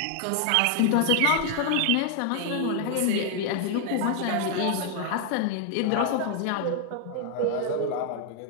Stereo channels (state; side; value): different; both; correlation 0.00